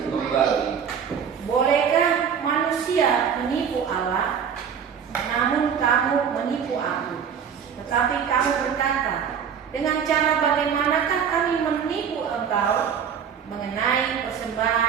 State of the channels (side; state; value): left; quieter; 7.5 dB